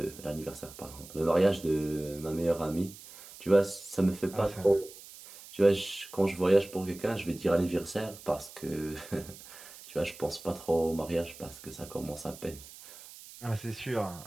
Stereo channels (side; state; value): right; noise; hiss, 17 dB below the sound